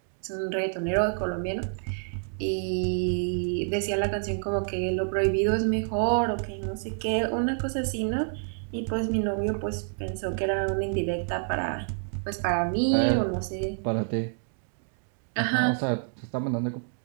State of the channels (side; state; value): left; silent; digital silence